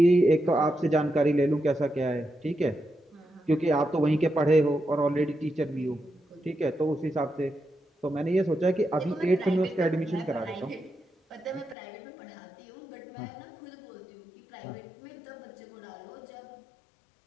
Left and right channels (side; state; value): right; drops out; at 11.8 s